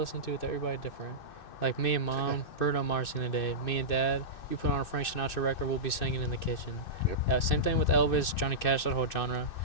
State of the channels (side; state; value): right; late; 2.6 ms